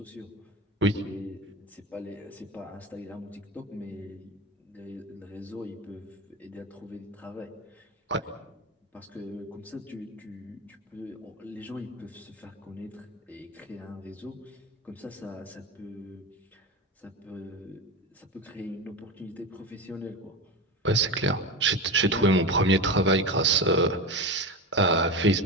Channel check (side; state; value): both; normal; correlation 0.22